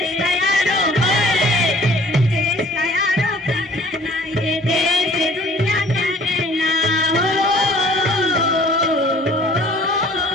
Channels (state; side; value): normal; both; correlation 0.53